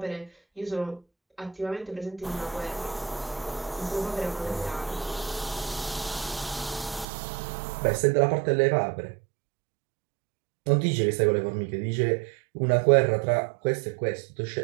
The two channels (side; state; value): left; drops out; at 7.1 s